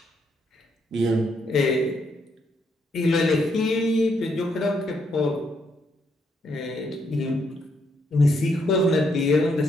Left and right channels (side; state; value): both; normal; correlation 0.75